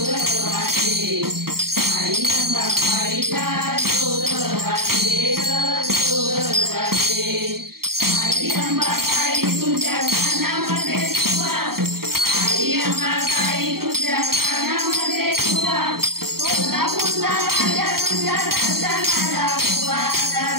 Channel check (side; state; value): left; late; 0.93 ms